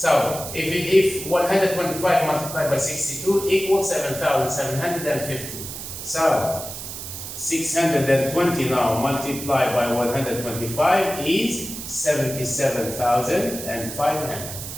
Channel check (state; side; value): noise; right; hiss, 9 dB below the sound